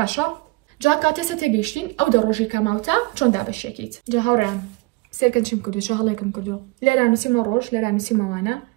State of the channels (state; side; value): quieter; left; 24.3 dB